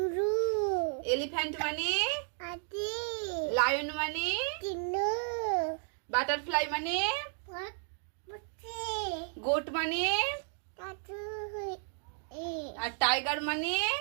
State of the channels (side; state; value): left; silent; 56 dB below the other